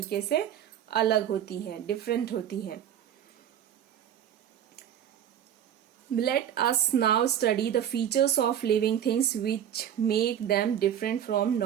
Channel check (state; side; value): quieter; left; 9.9 dB